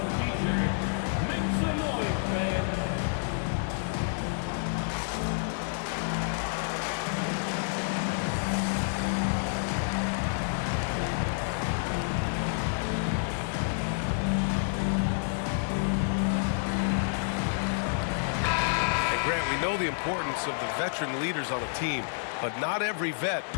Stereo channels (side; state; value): right; silent; 58 dB below the other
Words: teacher. Make some noise, man. We know the importance of the veteran leaders on a team, but not every vet